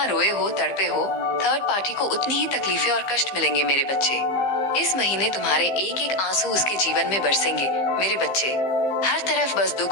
रोए हो, तड़पे हो, थर्ड पार्टी को उतनी ही तकलीफें और कष्ट मिलेंगे मेरे बच्चे। इस महीने तुम्हारे एक एक आंसू उसके जीवन में बरसेंगे मेरे बच्चे। हर तरफ बस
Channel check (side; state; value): right; late; 15 ms